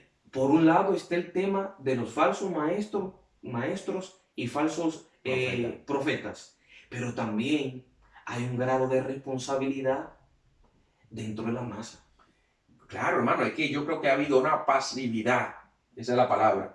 Por un lado está el tema de los falsos maestros y falsos profetas, pero también hay un grado de responsabilidad dentro de la masa. Claro, hermano, es que yo creo que ha habido una pasividad, esa es la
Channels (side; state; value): both; identical; correlation 1.00